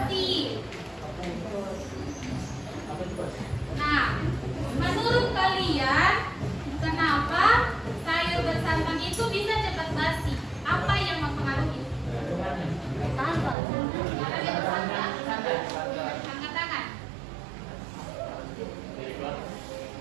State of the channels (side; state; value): left; drops out; at 13.6 s